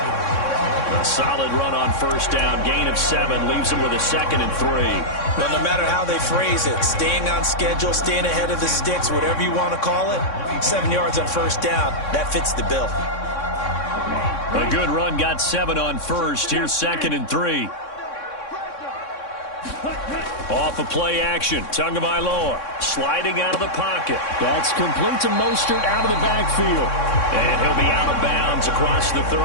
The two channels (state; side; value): late; right; 3.6 ms